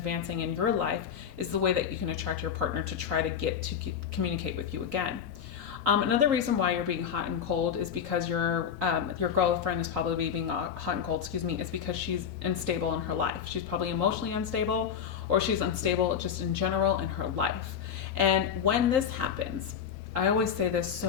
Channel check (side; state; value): right; quieter; 7.9 dB